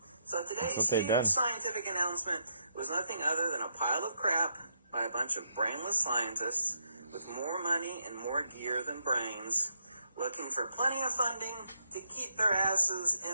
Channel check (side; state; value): both; inverted; correlation -0.78